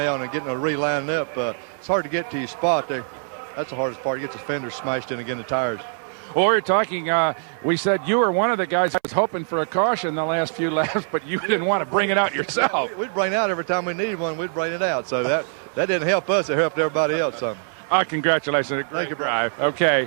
and getting a relined up. It's hard to get to your spot there. That's the hardest part. You get the fenders smashed in again, the tires. Well, we were talking, we said you were one of the guys that was hoping for a caution the last few laps, but you didn't want to bring it out yourself. We'd bring it out every time we needed one. We'd bring it out. So that didn't help us. It helped everybody else some. Congratulations. Thank you, Drive. Okay,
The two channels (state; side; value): silent; left; 63 dB below the other